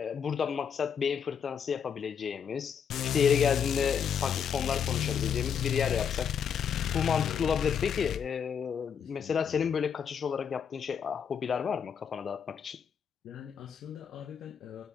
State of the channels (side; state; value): right; quieter; 7.5 dB